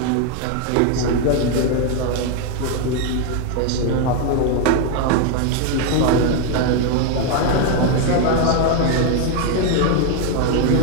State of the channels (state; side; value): different; both; correlation 0.01